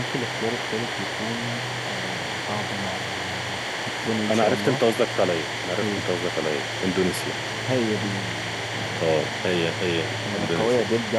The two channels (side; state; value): both; identical; correlation 1.00